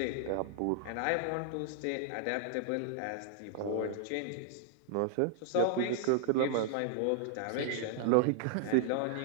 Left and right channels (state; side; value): different; both; correlation -0.01